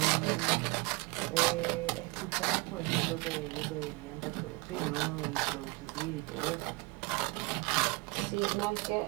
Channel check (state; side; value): quieter; left; 26.0 dB